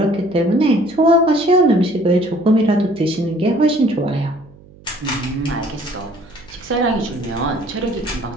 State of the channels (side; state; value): right; noise; hum, 24 dB below the sound